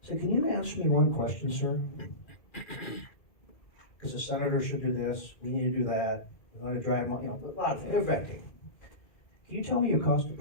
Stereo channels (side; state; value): right; late; 2.1 ms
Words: said, can you answer me one question, sir? Because the senator should do this, we need to do that, we want to drive, a lot of things, they're venting. Can you tell me your cost of